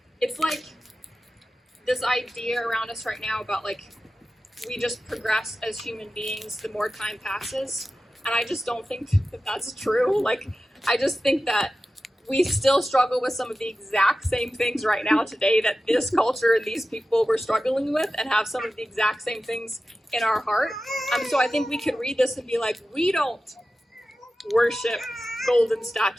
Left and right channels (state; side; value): normal; both; correlation 0.94